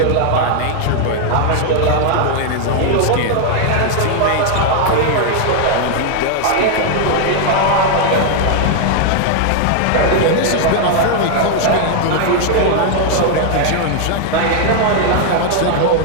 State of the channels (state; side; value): different; both; correlation 0.00